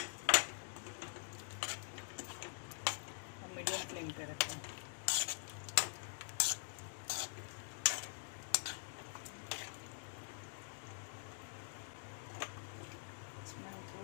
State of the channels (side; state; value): right; silent; digital silence